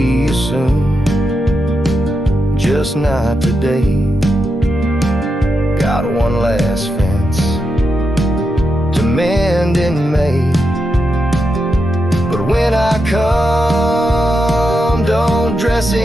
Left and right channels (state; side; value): normal; both; correlation 0.86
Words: you soon, just not today. Got one last fence to mend in May, but when I come, don't dress